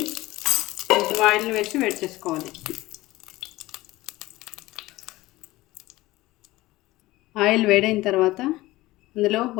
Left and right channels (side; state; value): right; quieter; 18.5 dB